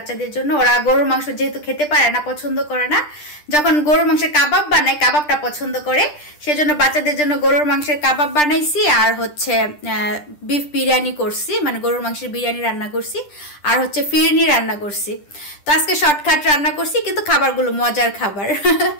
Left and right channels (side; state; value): right; late; 10 ms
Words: জন্য। ওরা গরুর মাংস যেহেতু খেতে পারে না, পছন্দ করে না, যখন গরুর মাংসের কাবাব বানাই কাবাবটা পছন্দ করে, সেজন্য বাচ্চাদের জন্য গরুর মাংসের কাবাব বানাইছি। আর হচ্ছে বিফ বিরিয়ানি করছি, মানে গরুর মাংসের বিরিয়ানি রান্না করছি। আর হচ্ছে ফিরনি রান্না করছি। তো আজকে শর্টকাট রান্না করছি, কিন্তু খাবারগুলো মজার খাবার।